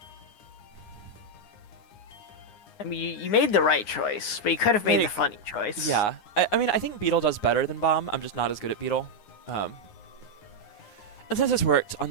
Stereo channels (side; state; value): right; late; 9.7 ms